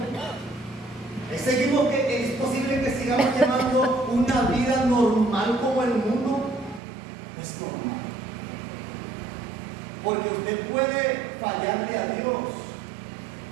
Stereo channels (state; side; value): drops out; left; at 6.8 s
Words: ¿Es posible que sigamos llevando una vida normal como el mundo? No es normal. Porque usted puede fallarle a Dios.